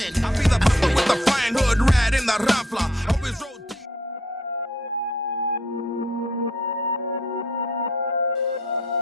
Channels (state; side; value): normal; both; correlation 0.66